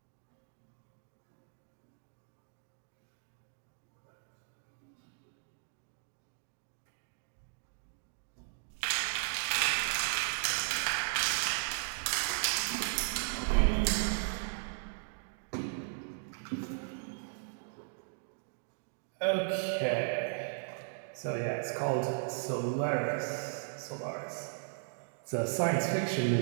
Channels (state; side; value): silent; left; digital silence